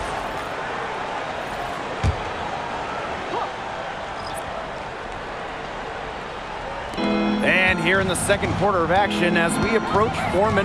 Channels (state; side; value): identical; both; correlation 1.00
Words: And here in the second quarter of action as we approach 4